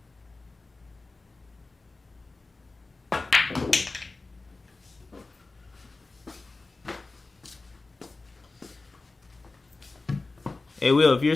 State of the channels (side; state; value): right; quieter; 3.5 dB